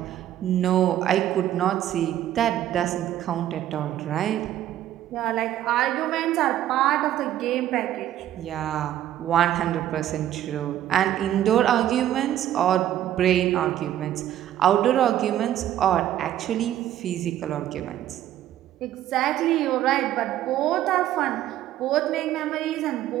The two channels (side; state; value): left; quieter; 12.2 dB